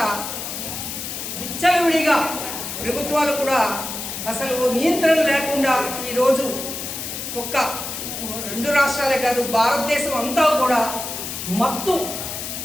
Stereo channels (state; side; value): noise; left; hiss, 6 dB below the sound